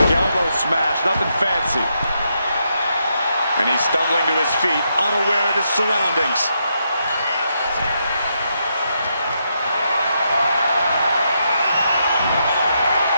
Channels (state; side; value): inverted; both; correlation -0.81